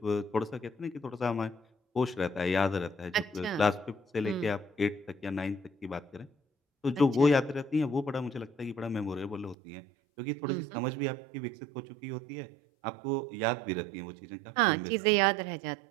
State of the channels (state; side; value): drops out; left; at 9.6 s